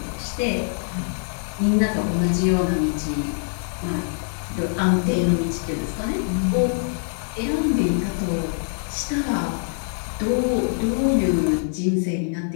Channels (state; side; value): silent; right; 63 dB below the other